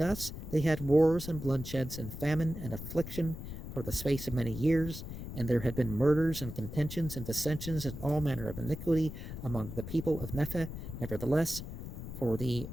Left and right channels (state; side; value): noise; left; rumble, 9 dB below the sound